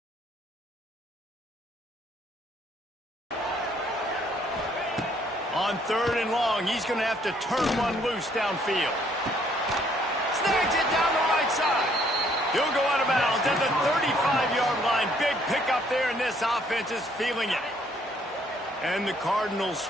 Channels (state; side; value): normal; both; correlation 0.65